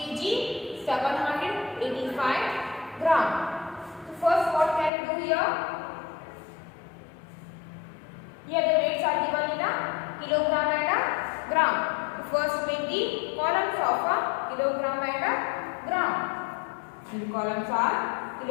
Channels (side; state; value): right; drops out; at 4.9 s